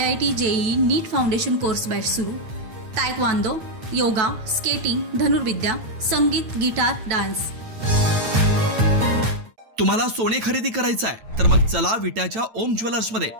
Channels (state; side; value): late; left; 9.1 ms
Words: JEE, नीट फाउंडेशन कोर्स बॅच सुरू। तायक्वांदो, योगा, स्केटिंग, धनुर्विद्या, संगीत, गिटार, डान्स। तुम्हाला सोने खरेदी करायचं आहे तर मग चला विट्याच्या ओम ज्वेलर्स मध्ये।